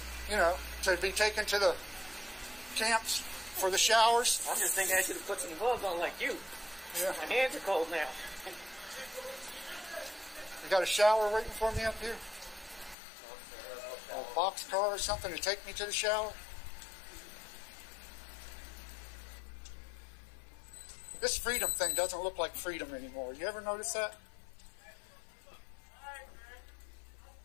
You know, to be taken to the camps for the showers. I'm just thinking I should have put some gloves on like you. Yeah. My hands are cold now. You got a shower waiting for me up here? A boxcar or something to take me to the shower? This freedom thing doesn't look like freedom anymore. You ever notice that?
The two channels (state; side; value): drops out; right; at 13.0 s